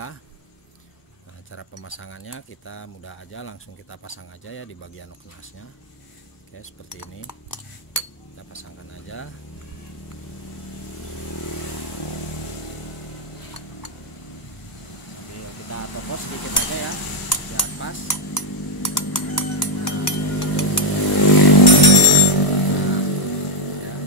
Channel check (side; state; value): right; late; 1.0 ms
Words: Nah, cara pemasangannya kita mudah aja, langsung kita pasang aja ya di bagian noken asnya. Oke, seperti ini kita pasangkan aja. Kita topos sedikit aja ya biar pas. Nah, ya.